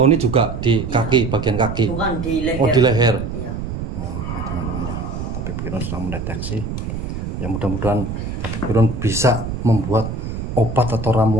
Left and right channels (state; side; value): noise; right; rumble, 5 dB below the sound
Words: juga di kaki, bagian kaki. Bukan di leher. Oh, di leher. Iya. Oh, ya, teman-teman ya. Tabib Kirun sudah mendeteksi. Ya mudah-mudahan tabib Kirun bisa membuat obat atau